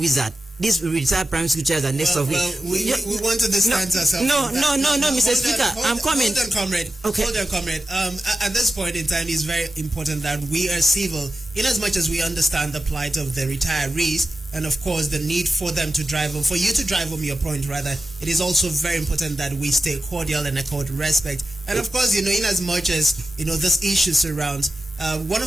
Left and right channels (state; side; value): normal; both; correlation 0.93